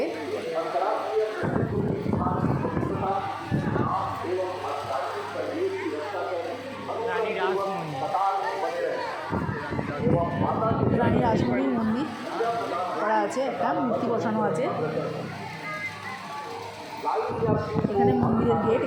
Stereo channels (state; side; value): identical; both; correlation 1.00